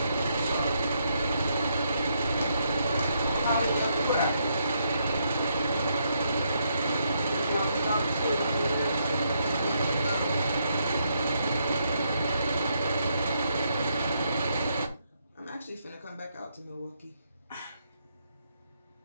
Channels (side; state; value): both; inverted; correlation -0.77